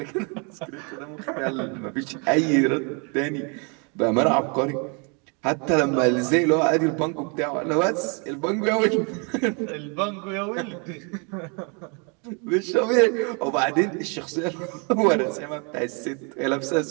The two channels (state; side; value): quieter; left; 35.1 dB